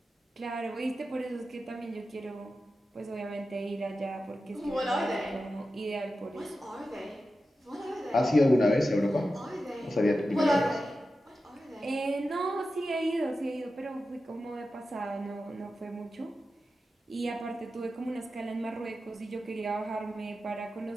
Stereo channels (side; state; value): both; normal; correlation 0.92